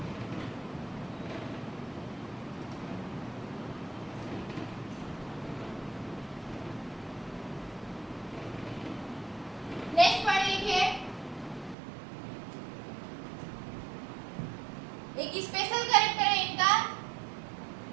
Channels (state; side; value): drops out; left; at 11.8 s